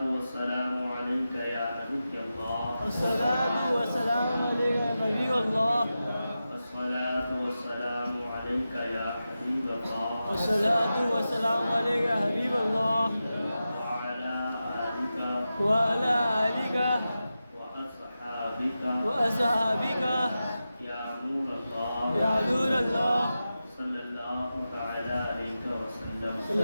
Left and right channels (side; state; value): both; inverted; correlation -0.92